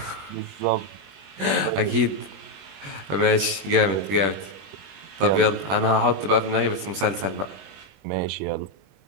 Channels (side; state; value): left; late; 21 ms